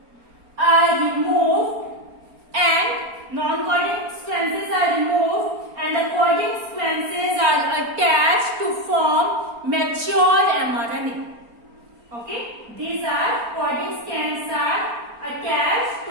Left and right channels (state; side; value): late; left; 4.3 ms